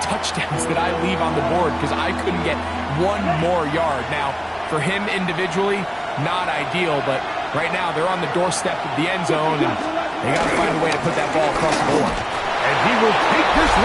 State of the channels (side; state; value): both; identical; correlation 1.00